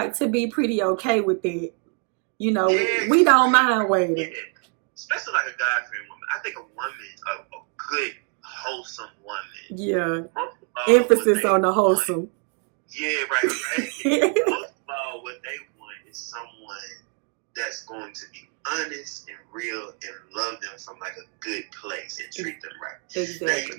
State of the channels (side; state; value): left; quieter; 38.6 dB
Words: to be pretty okay with it. We don't mind waiting. Yeah. Especially like a God-fearing woman. I think a woman, a good, wholesome woman. Yeah. Emphasis on the wholesome. Yeah, right. Most of all, what they want is someone that's going to be honest and real and love them from like a good place and treat them right. Exactly. Now,